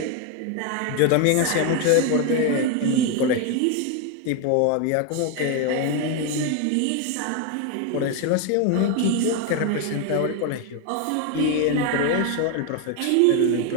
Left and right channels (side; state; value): both; different; correlation 0.01